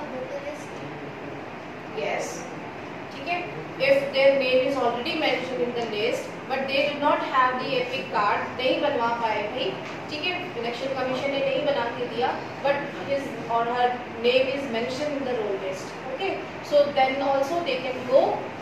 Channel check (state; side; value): identical; both; correlation 1.00